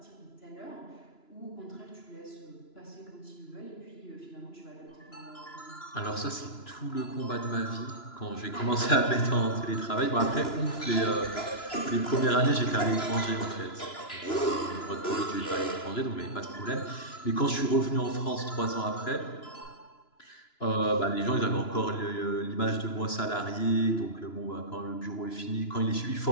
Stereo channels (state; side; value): late; right; 2.9 ms